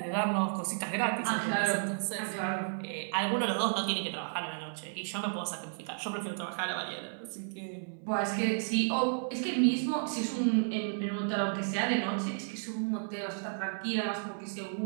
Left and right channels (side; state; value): left; silent; 56 dB below the other